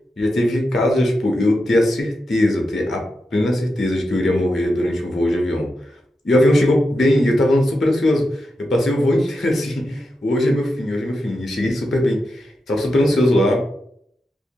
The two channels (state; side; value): normal; both; correlation 0.88